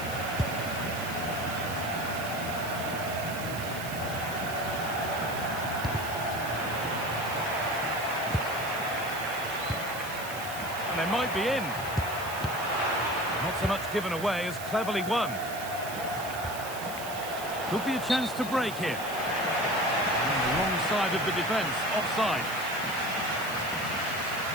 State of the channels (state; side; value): noise; right; hiss, 11 dB below the sound